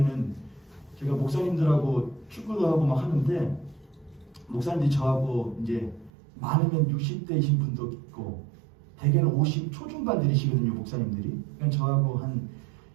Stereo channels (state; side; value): drops out; left; at 6.1 s